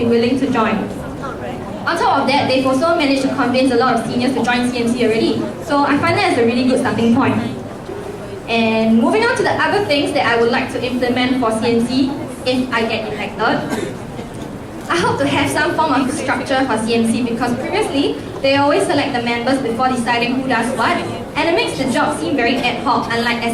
willing to join. On top of that, they've also managed to convince a lot of seniors to join CMC already, so I find that as a really good starting point. And moving on to the other things that I would like to implement for CMC if I get elected. I hope to have some form of structure for CMC because previously, they always select the members before deciding who does what, and it makes the job seem very ad hoc, unlike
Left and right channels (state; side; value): identical; both; correlation 1.00